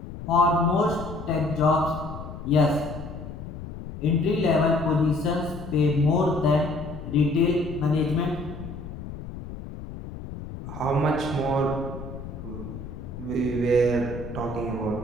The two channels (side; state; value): left; noise; rumble, 10 dB below the sound